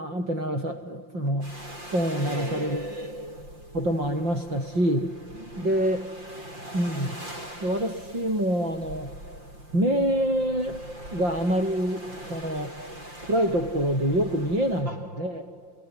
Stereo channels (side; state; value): left; late; 5.7 ms